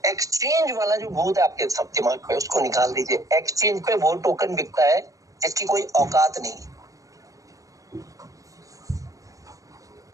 एक्सचेंज वाला जो भूत है आपके सब दिमाग पे, उसको निकाल दीजिए। एक्सचेंज पे वो टोकन बिकता है जिसकी कोई औकात नहीं।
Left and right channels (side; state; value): left; late; 0.16 ms